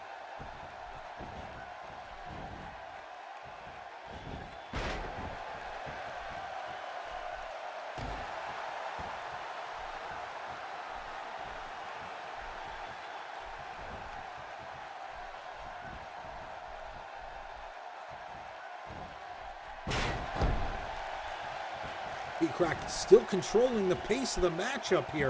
Pete Crack still controlling the pace of the matchup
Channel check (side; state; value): both; identical; correlation 1.00